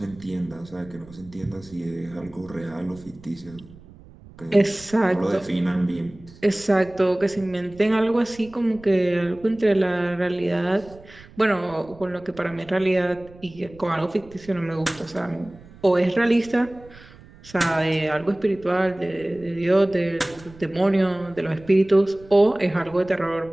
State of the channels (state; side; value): noise; right; rumble, 22 dB below the sound